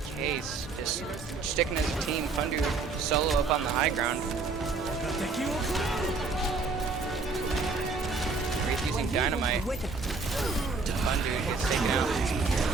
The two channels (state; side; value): quieter; left; 4.1 dB